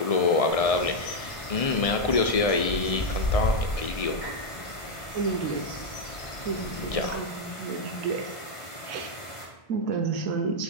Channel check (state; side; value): late; right; 1.6 ms